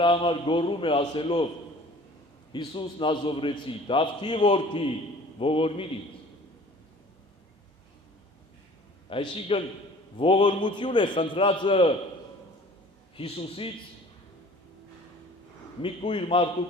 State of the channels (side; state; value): both; normal; correlation 0.48